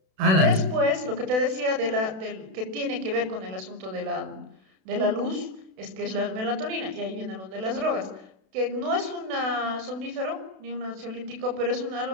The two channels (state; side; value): late; left; 32 ms